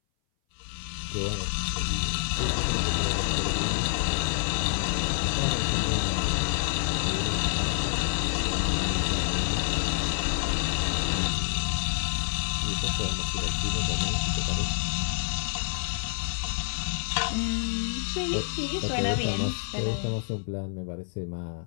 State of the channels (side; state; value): right; silent; 58 dB below the other